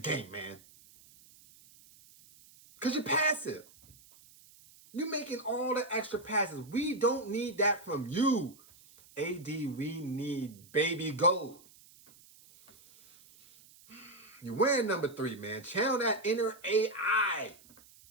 game, man. Because you're passive. You're making all the extra passes. We don't need that from you. AD, we need baby gold. You're wearing number 3, man. Channel that inner AI.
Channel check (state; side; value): noise; right; hiss, 25 dB below the sound